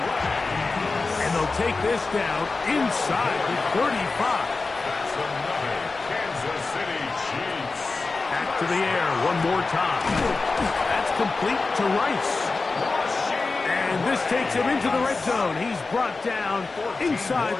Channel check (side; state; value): right; quieter; 3.9 dB